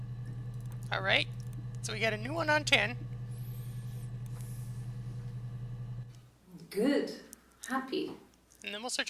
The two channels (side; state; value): both; identical; correlation 1.00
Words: Alright, so we got a new one on 10. Good. Happy. And then we'll search